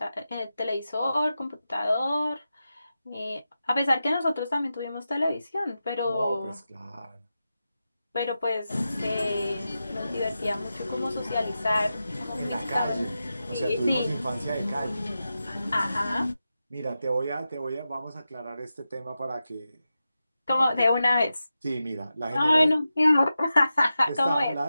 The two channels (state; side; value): inverted; both; correlation -0.91